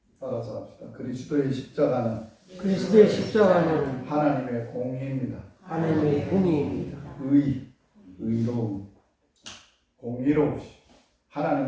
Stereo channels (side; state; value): both; identical; correlation 1.00